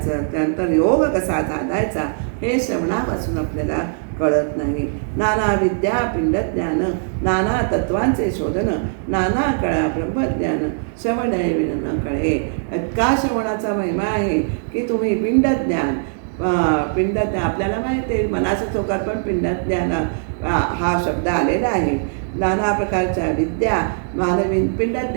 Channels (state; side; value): silent; left; digital silence